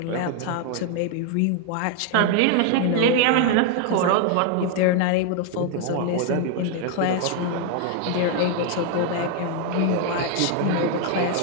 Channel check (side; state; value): both; different; correlation 0.00